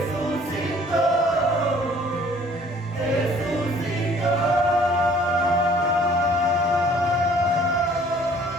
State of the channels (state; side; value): normal; both; correlation 0.56